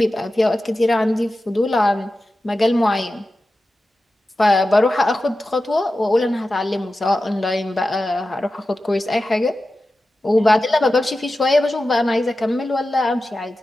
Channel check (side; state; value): both; normal; correlation 0.93